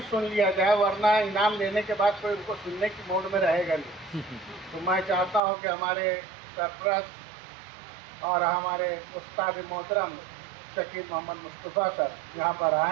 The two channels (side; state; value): left; drops out; at 5.4 s